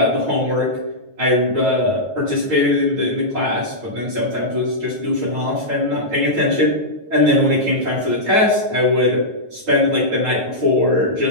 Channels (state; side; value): late; left; 9.3 ms